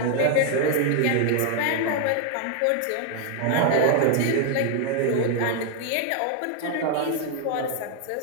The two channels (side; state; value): both; different; correlation 0.00